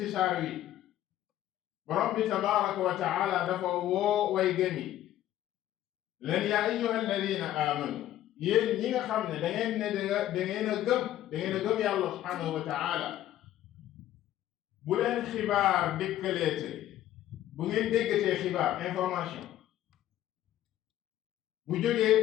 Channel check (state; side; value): quieter; right; 13.0 dB